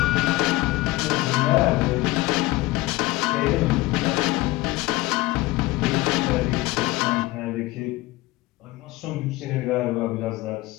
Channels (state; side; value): quieter; right; 19.1 dB